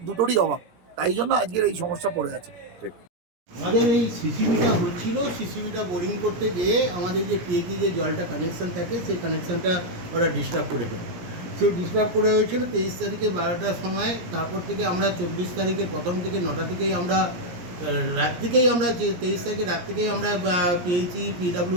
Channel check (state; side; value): late; left; 17 ms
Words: দুটোরই অভাব, তাই জন্য আজকের এই সমস্যা পড়ে আছে। আমাদের এই সিসিবিটা হচ্ছিল, সিসিবিটা বোরিং করতে গিয়ে আমাদের যে পিএইচি যে জলটা কানেকশান থাকে, সেই কানেকশানটা ওরা ডিস্টার্ব করে ফেলে। সেই ডিস্টার্ব করে হয়েছিল 23 তারিখে 12টার সময়। তারপর থেকে আমরা 24 তারিখের প্রথম থেকে 9টা থেকেই আমরা রাত থেকেই আমরা 23 তারিখে রাত থেকেই আমরা পিএইচি